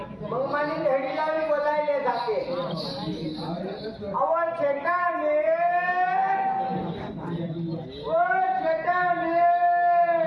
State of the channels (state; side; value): identical; both; correlation 1.00